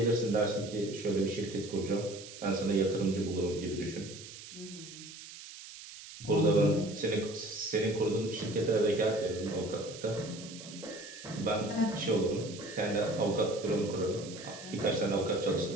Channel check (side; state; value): right; noise; hiss, 14 dB below the sound